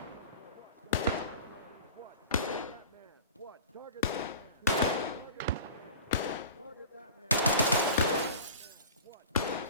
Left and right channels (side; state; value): both; inverted; correlation -0.39